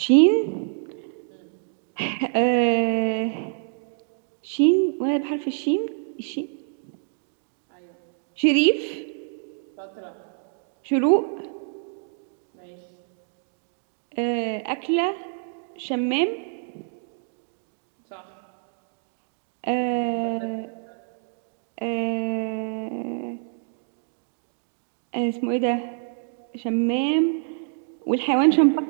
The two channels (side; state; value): left; silent; 61 dB below the other